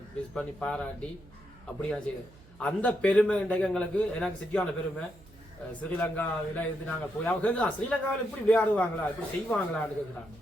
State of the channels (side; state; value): right; noise; hum, 24 dB below the sound